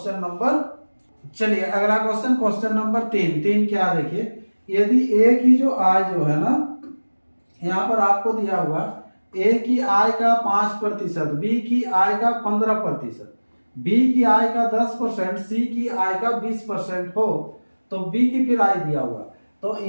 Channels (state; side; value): inverted; both; correlation -1.00